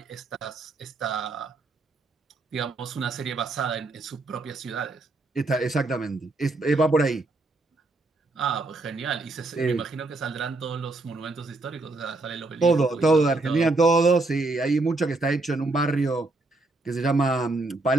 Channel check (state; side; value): quieter; left; 3.2 dB